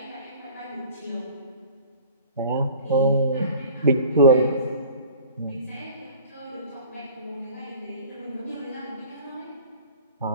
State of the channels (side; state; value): both; inverted; correlation -0.46